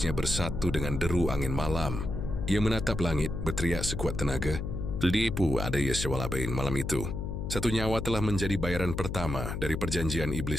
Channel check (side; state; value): left; noise; hum, 4 dB below the sound